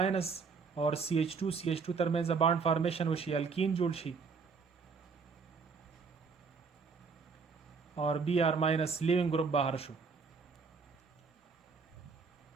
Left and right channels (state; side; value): quieter; left; 5.1 dB